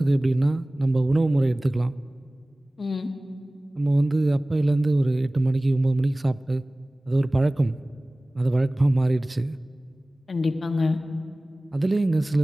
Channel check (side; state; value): both; normal; correlation 0.98